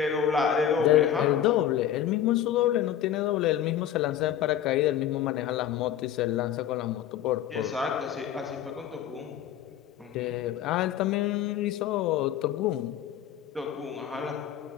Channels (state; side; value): quieter; right; 10.3 dB